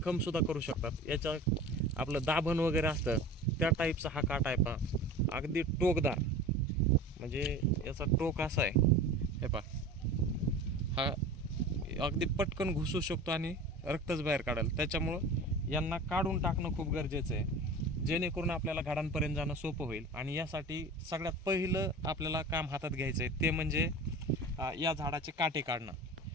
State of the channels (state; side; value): normal; both; correlation 0.36